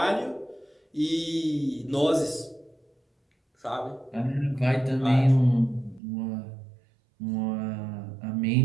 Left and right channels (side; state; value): left; drops out; at 6.0 s